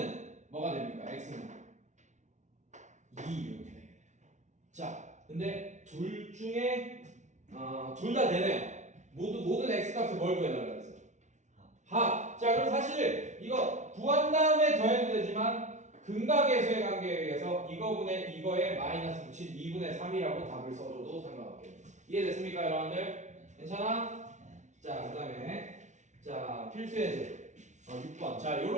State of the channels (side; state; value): left; late; 0.35 ms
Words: 뭐가 됩니까? x는 2 이렇게 되겠네요. 자, 근데 둘 중에 둘 다 되네요. 모든 x 값을 뭘 구해달라고 했어요? 합. 자, 그럼 사실 이거 구한 다음에 더해도 되지만 근각계수의 관계에 의해서 이거분의 이거에 마이너스 붙인 2분의 3이라고 답을 써줘도 상관없겠네요. 이해됐습니까 여러분들? 괜찮아? 자, 그 다음에 자, 필수의 제 6번. 자,